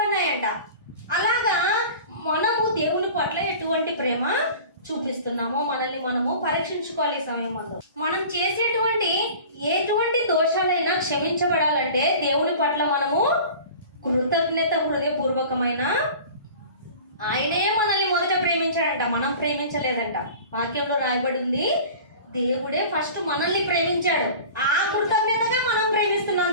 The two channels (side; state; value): both; inverted; correlation -0.40